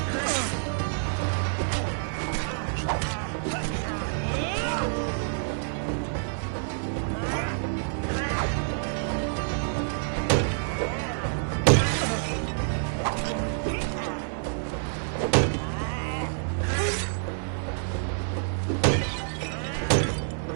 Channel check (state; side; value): silent; left; 59 dB below the other